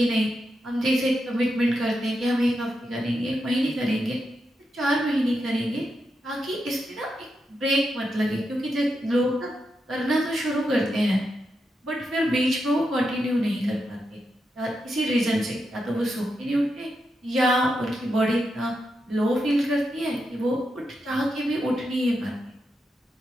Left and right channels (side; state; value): both; normal; correlation 0.86